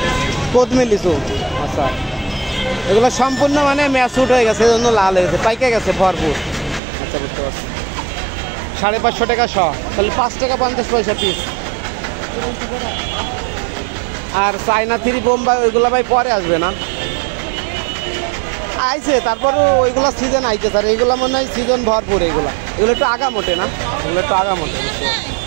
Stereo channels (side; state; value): left; drops out; at 6.8 s